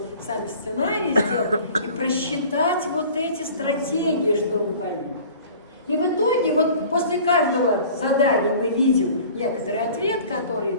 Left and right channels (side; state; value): both; inverted; correlation -0.46